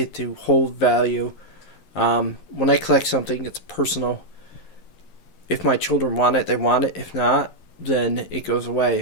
to hold value. When I collect something, it's personal. If my children want it, they want it. If not, then it goes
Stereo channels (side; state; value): right; late; 11 ms